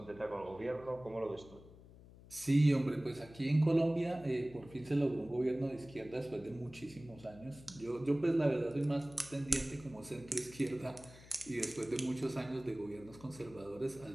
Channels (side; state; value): left; noise; hum, 20 dB below the sound